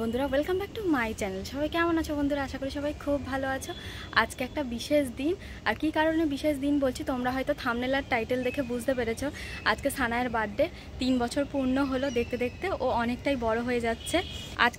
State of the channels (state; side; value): identical; both; correlation 1.00